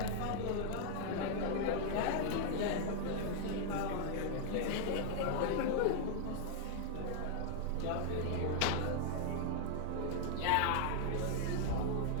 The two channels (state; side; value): different; both; correlation 0.00